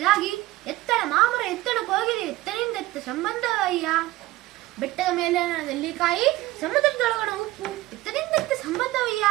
ಎತ್ತಣ ಮಾಮರ ಎತ್ತಣ ಕೋಗಿಲೆ ಎತ್ತನಿಂದ ಎತ್ತ ಸಂಬಂಧವಯ್ಯ, ಬೆಟ್ಟದ ಮೇಲೆ ನೆಲ್ಲಿಕಾಯಿ ಸಮುದ್ರದೊಳಗಣ ಉಪ್ಪು ಎತ್ತನಿಂದ ಎತ್ತ ಸಂಬಂಧವಯ್ಯ,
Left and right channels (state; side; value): quieter; left; 18.2 dB